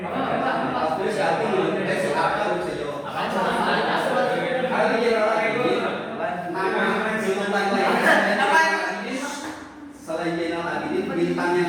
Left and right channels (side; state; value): both; identical; correlation 1.00